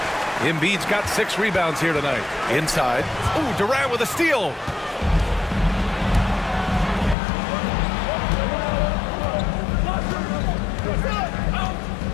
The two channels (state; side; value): drops out; right; at 7.2 s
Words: Embiid's got 6 rebounds here tonight. Inside. Oh, Durant with a steal.